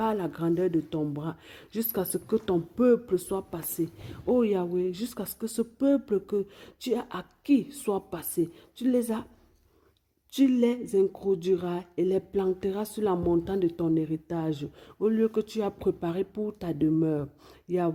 la grandeur de ton bras, jusqu'à ce que ton peuple soit passé. Ô Yahweh, jusqu'à ce que ce peuple que tu as acquis soit passé. Tu les introduiras et les planteras sur la montagne de ton héritage, au lieu que tu as préparé pour ta demeure.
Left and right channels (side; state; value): both; identical; correlation 1.00